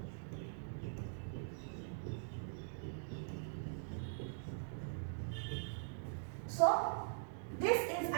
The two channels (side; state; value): left; silent; digital silence